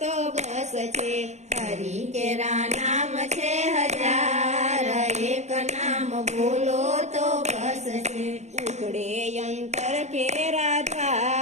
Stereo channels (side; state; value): left; late; 0.33 ms